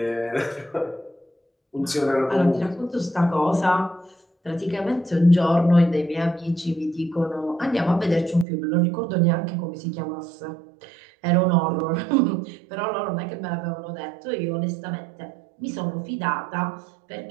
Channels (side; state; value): left; drops out; at 8.5 s